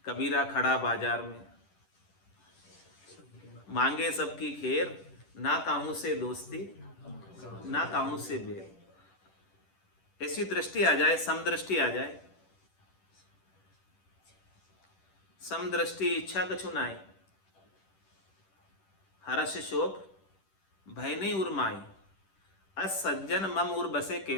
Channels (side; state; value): right; late; 10 ms